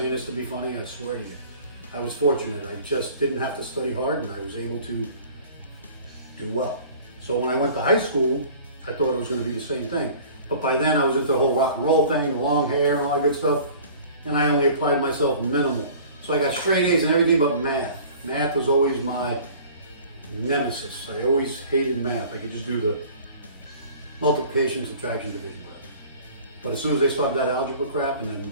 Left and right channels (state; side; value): inverted; both; correlation -0.46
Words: this to be funny, I swear to you. I was fortunate. I just didn't have to study hard, and I was able to do well. So when I went to high school, I thought it was going to be the same thing. But by then I was into the whole rock and roll thing, the long hair and all that good stuff. And I only applied myself minimal. So I got straight A's in everything but math. Math was always my nemesis. I always hated math. I could just do the multiplication, subtraction, division. But as soon as they started that algebra crap, and then